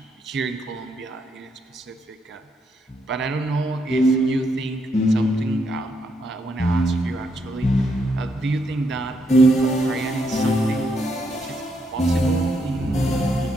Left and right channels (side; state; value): both; normal; correlation 0.77